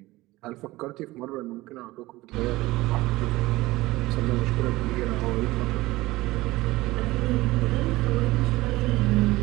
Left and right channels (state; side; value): quieter; left; 19.1 dB